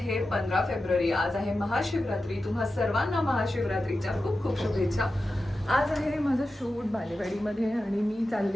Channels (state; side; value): normal; both; correlation 0.92